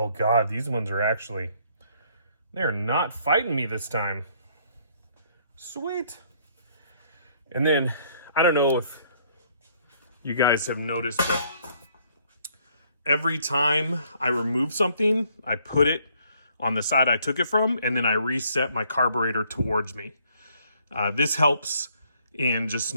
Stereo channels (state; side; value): inverted; both; correlation -0.65